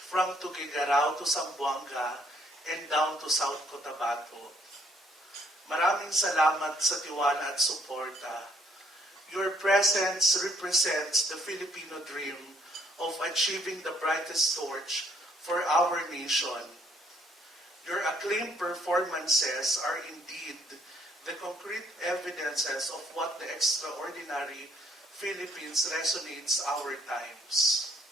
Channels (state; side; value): normal; both; correlation 0.66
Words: Tuguegarao to Zamboanga and down to South Cotabato. Maraming salamat sa tiwala at suporta. Your presence represents the Filipino dream of achieving the brightest torch for our nation. Your acclaimed performances are indeed the concrete evidences of what the extraordinary Philippines resonates our times.